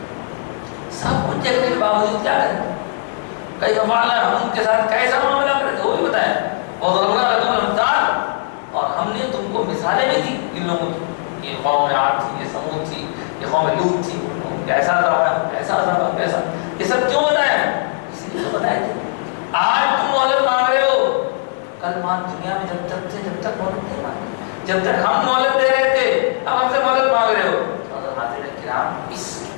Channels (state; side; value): silent; right; digital silence